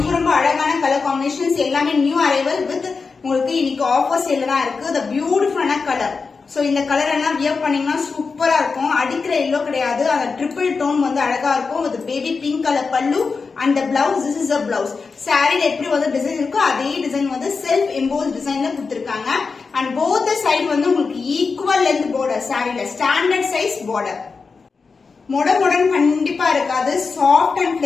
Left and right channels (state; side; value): quieter; right; 4.7 dB